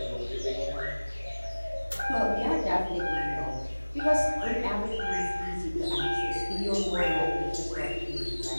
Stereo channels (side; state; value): both; inverted; correlation -1.00